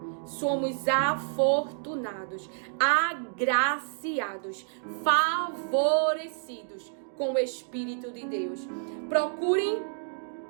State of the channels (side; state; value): left; silent; digital silence